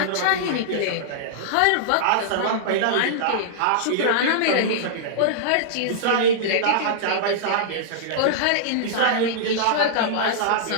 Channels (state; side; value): different; both; correlation -0.02